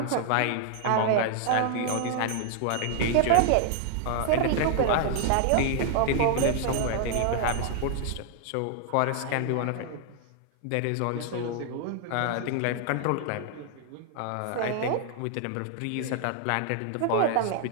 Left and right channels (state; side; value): different; both; correlation 0.00